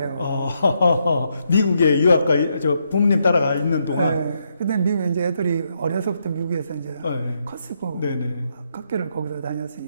미국에 유학가 저 부모님 따라가 있는 동안. 네. 근데 미국 이제 애들이 어려서부터 미국에서 이제 컸고 학교를 거기서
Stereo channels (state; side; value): inverted; both; correlation -0.78